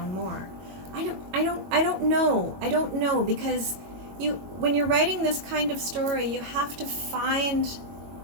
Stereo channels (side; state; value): left; late; 21 ms